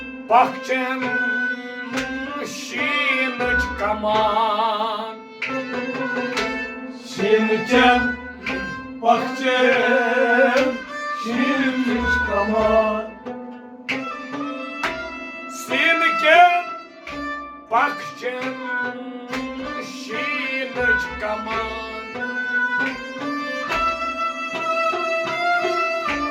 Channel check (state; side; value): identical; both; correlation 1.00